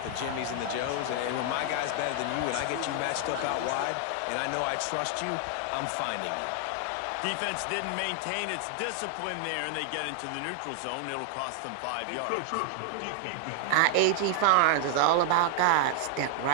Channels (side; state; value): both; different; correlation 0.00